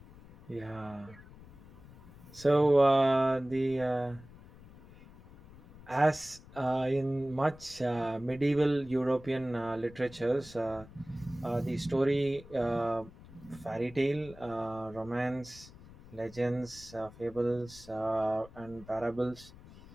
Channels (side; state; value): left; noise; rumble, 20 dB below the sound